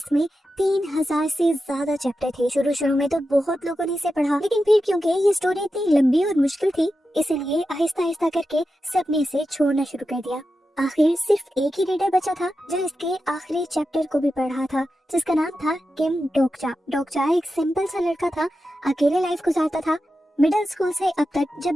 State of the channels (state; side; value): normal; both; correlation 0.90